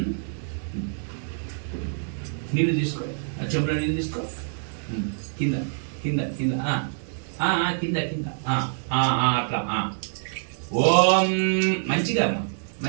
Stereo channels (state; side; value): silent; left; digital silence